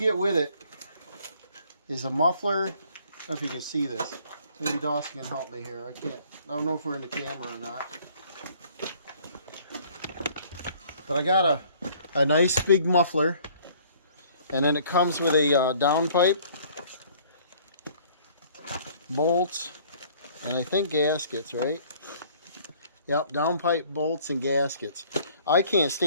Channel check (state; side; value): inverted; both; correlation -0.57